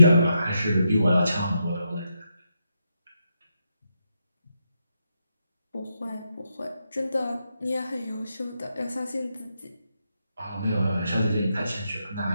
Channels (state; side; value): inverted; both; correlation -0.83